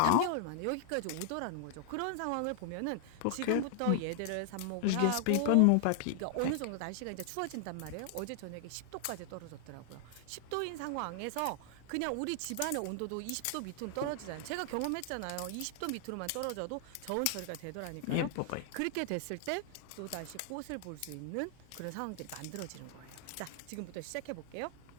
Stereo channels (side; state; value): both; different; correlation 0.00